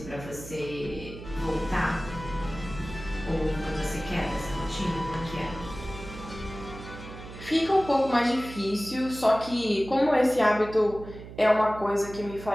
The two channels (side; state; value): right; noise; hum, 13 dB below the sound